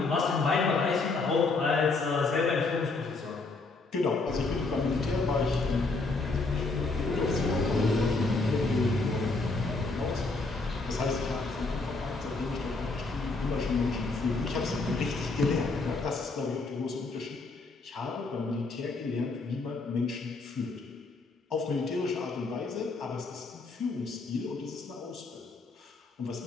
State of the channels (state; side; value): quieter; right; 3.6 dB